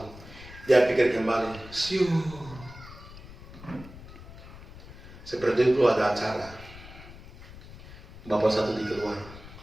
Dia pikir kembali, siu. Seperti itu ada acara. Bapak satu di keluar,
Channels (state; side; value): noise; left; rumble, 17 dB below the sound